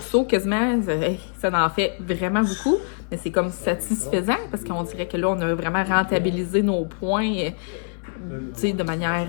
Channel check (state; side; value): silent; right; digital silence